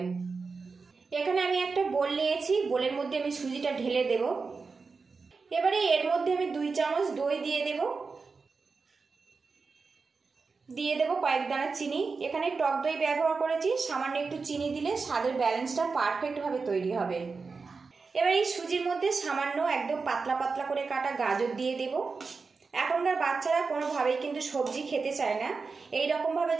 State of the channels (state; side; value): quieter; left; 4.6 dB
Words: এখানে আমি একটা বোল নিয়েছি, বোলের মধ্যে আমি সুজিটা ঢেলে দেব। এবারে এর মধ্যে আমি 2 চামচ দই দিয়ে দেব কয়েক দানা চিনি। এখানে টক দই ব্যবহার করেছি, সামান্য একটু চিনি দিলে স্বাদের ব্যালেন্সটা পারফেক্টভাবে তৈরি হবে। এবার এই সুজির মধ্যে সামান্য একদম পাতলা পাতলা করে কাটা গাজর দিয়ে দেব। এখনকার বাচ্চারা কোনোভাবেই কিন্তু সবজি খেতে চায় না। এই রকমভাবে